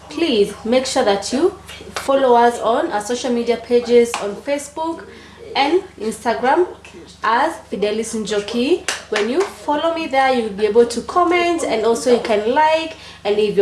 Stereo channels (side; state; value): both; identical; correlation 1.00